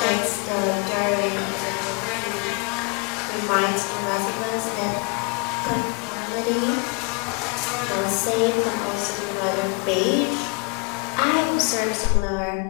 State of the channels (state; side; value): quieter; right; 31.4 dB